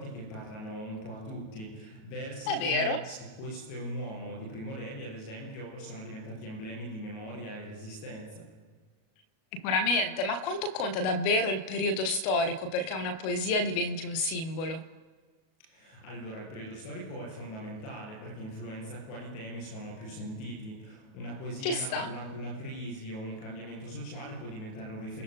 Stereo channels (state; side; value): late; right; 37 ms